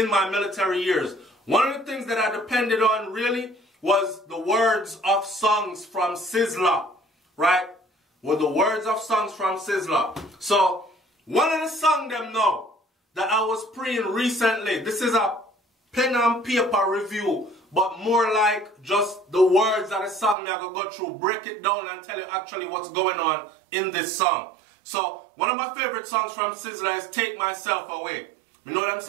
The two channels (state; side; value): drops out; left; at 20.4 s